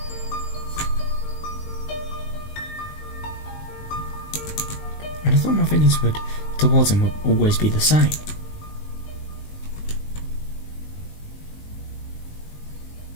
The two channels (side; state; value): right; late; 19 ms